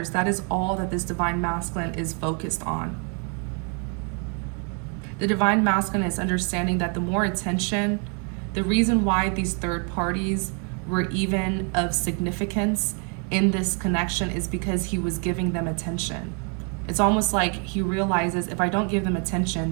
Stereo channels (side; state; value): left; quieter; 38.3 dB